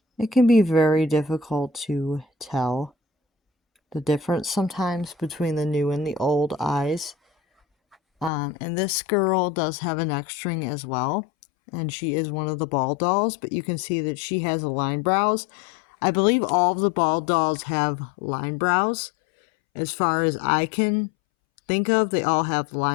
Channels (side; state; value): right; drops out; at 8.3 s